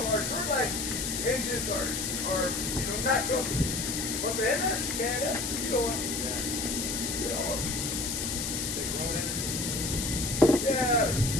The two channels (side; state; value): left; noise; hiss, 2 dB below the sound